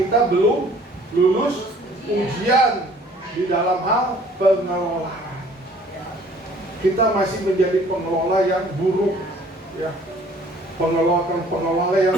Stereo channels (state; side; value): normal; both; correlation 0.55